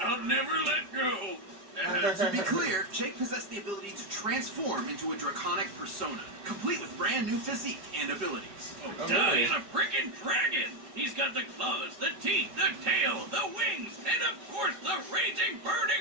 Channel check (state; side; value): late; left; 5.0 ms